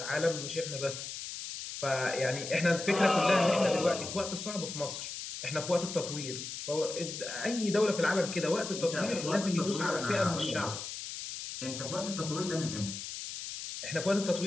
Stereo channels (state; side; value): noise; left; hiss, 7 dB below the sound